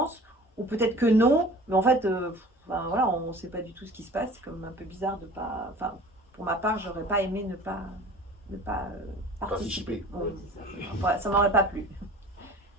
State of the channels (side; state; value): both; normal; correlation 0.43